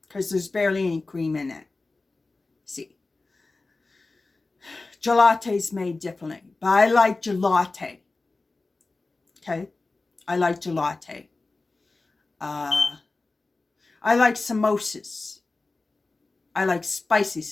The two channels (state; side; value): quieter; right; 3.5 dB